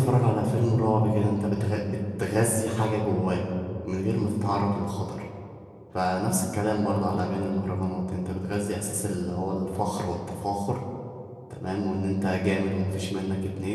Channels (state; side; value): identical; both; correlation 1.00